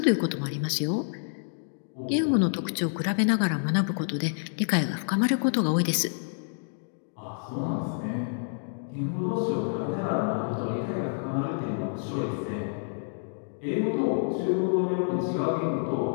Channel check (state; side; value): silent; right; digital silence